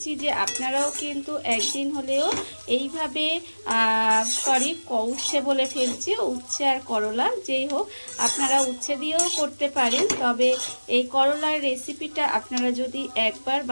যে আপনারাও কিন্তু একদিন হলেও এইভাবে উচ্ছে বলে ফেলছি, উচ্ছে আর করলা যেই হোক, আপনারা উচ্ছে দিয়েও করতে পারেন। তবে এই করলার রেসিপিটা আপনারা যদি একবার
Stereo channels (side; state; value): both; inverted; correlation -1.00